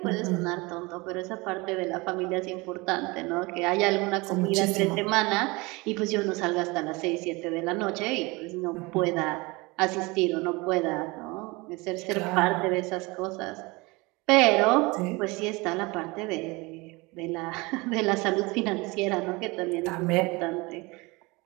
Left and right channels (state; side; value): quieter; left; 24.8 dB